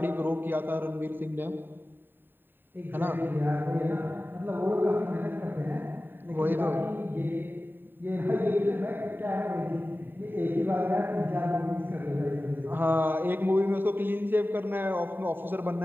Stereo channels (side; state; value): left; late; 0.095 ms